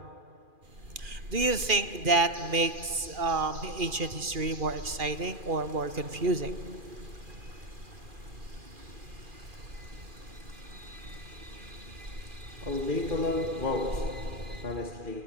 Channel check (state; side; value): late; left; 2.4 ms